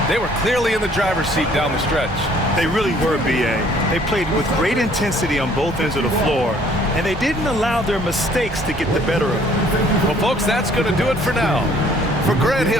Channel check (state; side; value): normal; both; correlation 0.59